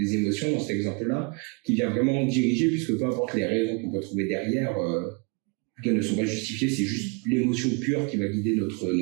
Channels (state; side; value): quieter; left; 33.2 dB